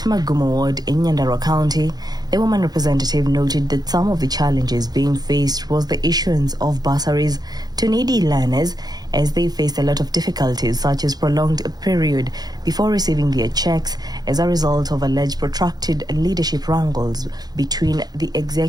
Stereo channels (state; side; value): late; left; 0.19 ms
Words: Magumo Ward in Nyandarua County, the woman representative noted that some of the challenges being faced was the issuance of bursaries to needy learners, as they faced a lot of difficulties such as prolonged period before receiving their checks as a result of alleged protracted leadership wrangles between the